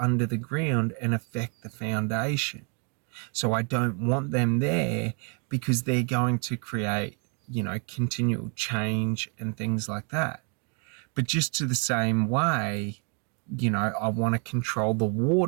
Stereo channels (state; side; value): quieter; left; 37.4 dB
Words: the ground and affect the foundation. So I don't want them there because they're going to create, continual change and things like that. But just to the same way, I want to control the